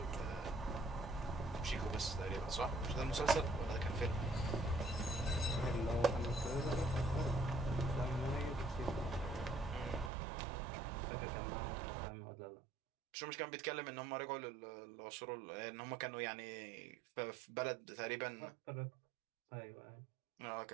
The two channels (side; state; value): left; drops out; at 10.1 s